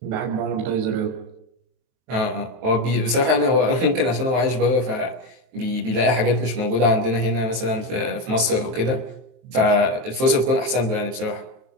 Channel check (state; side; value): late; left; 23 ms